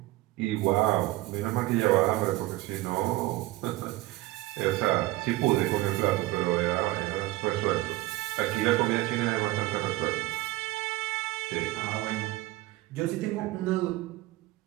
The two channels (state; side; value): quieter; left; 18.2 dB